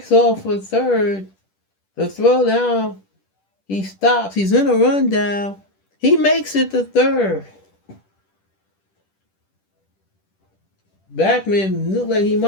off for third. The throw down, he stops. He's in a rundown. He makes it to third. Backman looked like he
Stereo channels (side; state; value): right; late; 10 ms